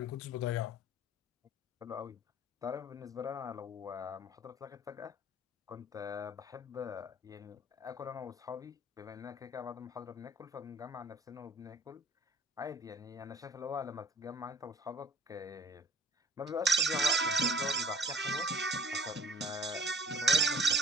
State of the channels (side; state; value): both; normal; correlation 0.51